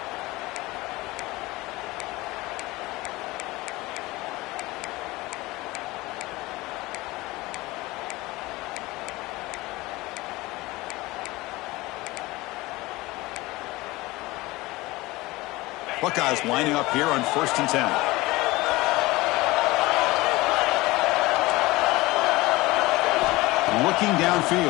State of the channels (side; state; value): right; quieter; 20.5 dB